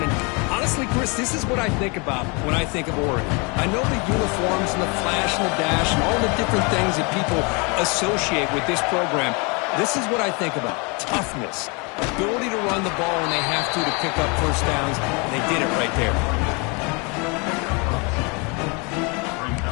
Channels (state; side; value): quieter; right; 31.2 dB